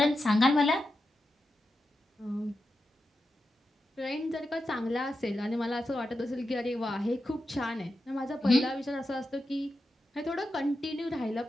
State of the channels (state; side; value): normal; both; correlation 0.89